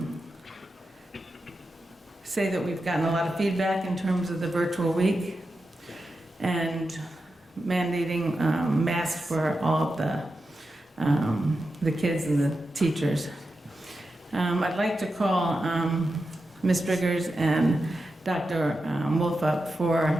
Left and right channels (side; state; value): both; normal; correlation 0.90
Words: say that we've gotten a lot of feedback in terms of the virtual week and mandating masks for all of the kids and the teachers. I'd like to call Ms. Driggers and Dr. Wolf up for